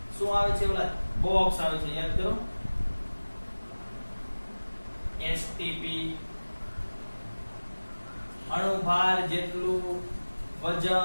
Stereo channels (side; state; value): both; inverted; correlation -1.00